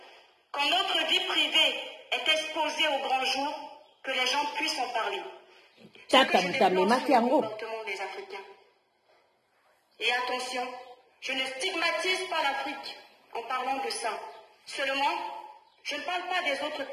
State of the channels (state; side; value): identical; both; correlation 1.00